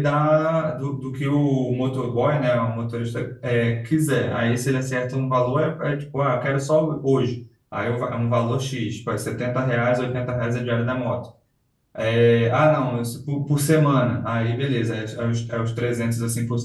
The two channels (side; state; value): both; identical; correlation 1.00